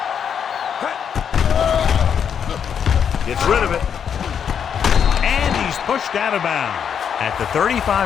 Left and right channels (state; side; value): quieter; right; 7.8 dB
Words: Gets rid of it. And he's pushed out of bounds at the